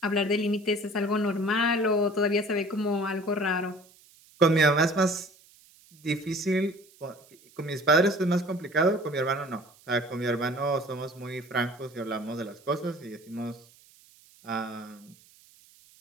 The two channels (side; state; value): right; noise; hiss, 27 dB below the sound